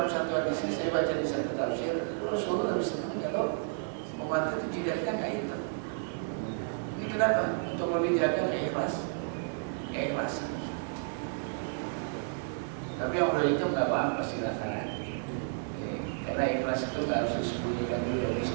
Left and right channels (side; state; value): left; silent; digital silence